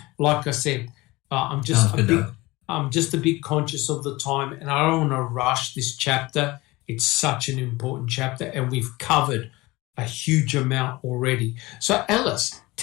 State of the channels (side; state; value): right; quieter; 21.2 dB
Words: I said, I'm just a bit conscious of the time, and I don't want to rush this chapter. It's such an important chapter, and we've covered a huge amount already. So, Alice,